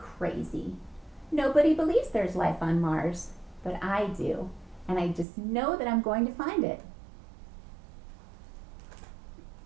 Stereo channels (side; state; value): left; drops out; at 5.2 s